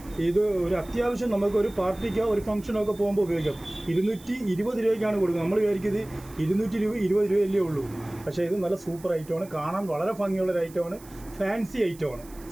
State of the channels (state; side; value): noise; right; hiss, 22 dB below the sound